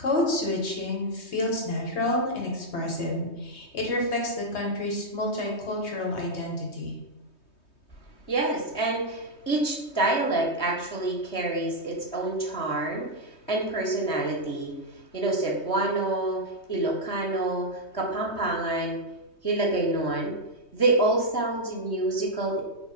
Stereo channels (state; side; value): late; right; 3.2 ms